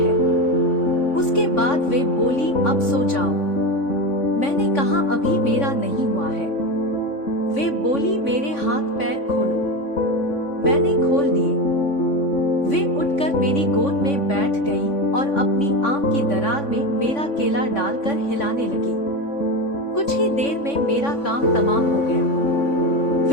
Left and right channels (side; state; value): right; late; 3.5 ms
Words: उसके बाद वे बोली, अब सो जाओ। मैंने कहा, अभी मेरा नहीं हुआ है। वे बोली, मेरे हाथ पैर खोलो। मैंने खोल दिए। वे उठकर मेरी गोद में बैठ गई और अपनी आम की दरार में मेरा केला डालकर हिलाने लगी। कुछ ही देर में मेरा काम तमाम हो गया।